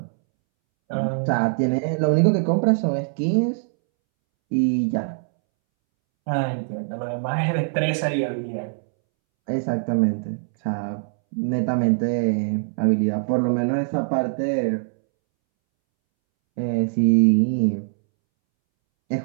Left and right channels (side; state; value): left; silent; 64 dB below the other